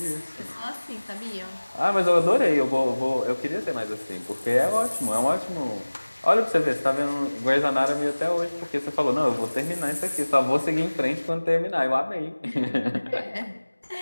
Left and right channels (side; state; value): both; inverted; correlation -1.00